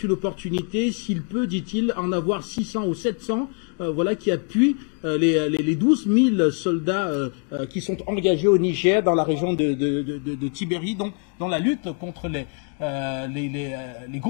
une opportunité, s'il peut, dit-il, en avoir 600 ou 700 voilà, qui appuient les 12 000 soldats qui sont engagés au Niger dans la région de Tibéri, donc dans la lutte contre les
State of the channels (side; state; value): right; quieter; 39.7 dB